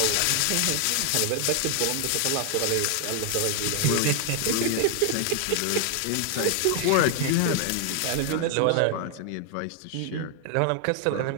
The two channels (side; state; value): both; different; correlation 0.00